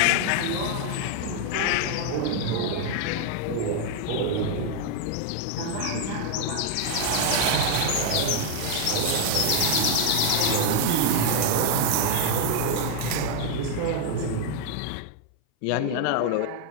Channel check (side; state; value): both; different; correlation 0.00